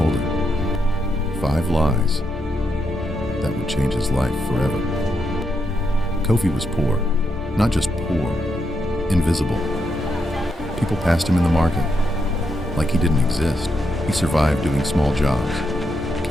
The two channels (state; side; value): normal; both; correlation 0.81